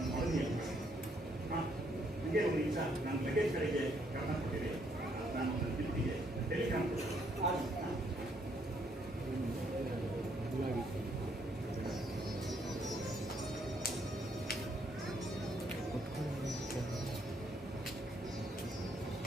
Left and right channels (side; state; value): both; normal; correlation 0.71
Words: ಮಡದಿ ಅಂತ. ನನಗೆ ಒಂದು ನಿಮಿಷ ನನ್ನ ಲಗೇಜ್ ಕಡೆಗೆ ಗಮನ ಕೊಟ್ಟಿದೆ. ನಾನು ನನ್ನ ತಿರುಗಿಗೆ ಟೆಲಿಗ್ರಾಮ್